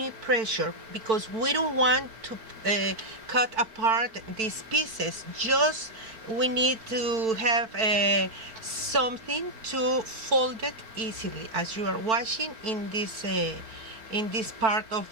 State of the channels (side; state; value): left; late; 4.5 ms